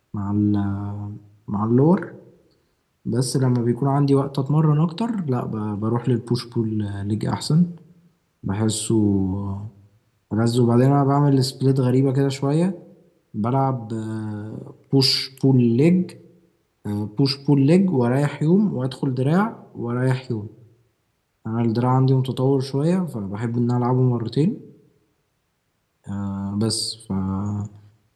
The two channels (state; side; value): identical; both; correlation 1.00